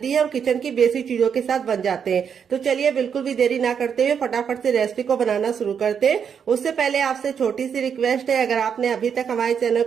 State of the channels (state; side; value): quieter; left; 7.3 dB